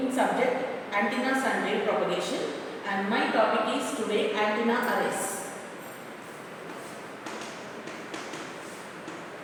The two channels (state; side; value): identical; both; correlation 1.00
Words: subject antennas and wave propagation, and my topic is today antenna arrays.